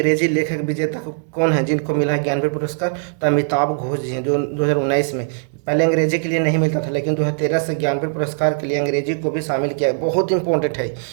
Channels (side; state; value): left; silent; digital silence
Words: लेखक विजेता कौन है जिनको मिला है ज्ञानपीठ पुरस्कार? तो अमिताभ घोष जी हैं, जो 2019 में। पहले अंग्रेजी के लिए नहीं मिलता था, लेकिन 2013 से ज्ञानपीठ पुरस्कार के लिए अंग्रेजी को भी शामिल किया है। बहुत इंपॉर्टेंट है,